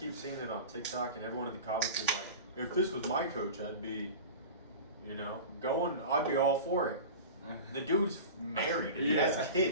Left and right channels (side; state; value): both; inverted; correlation -0.33